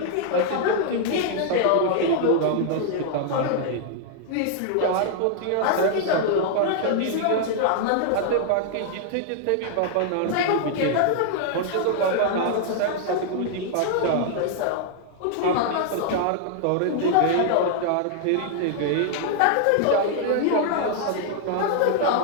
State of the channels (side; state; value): both; different; correlation -0.01